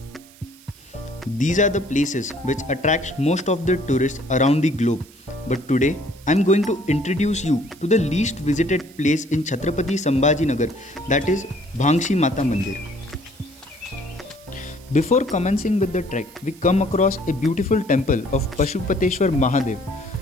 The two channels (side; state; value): right; noise; hiss, 24 dB below the sound